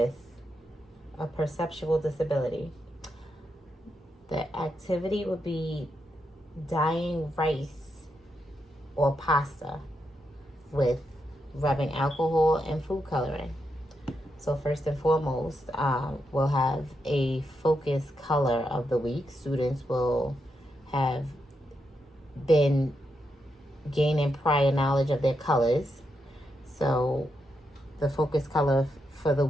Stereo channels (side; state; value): both; normal; correlation 0.83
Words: a perceptual disability. The activity would be dyeing rice or pasta with rubbing alcohol and food coloring. So first and foremost, we'll have a focus color of the week. Students will have been gaining prior knowledge of their colors. So the focus color for the